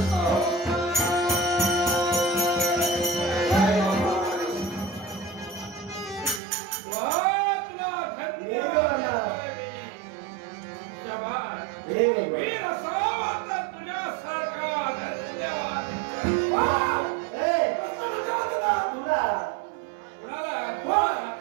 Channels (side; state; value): left; drops out; at 6.4 s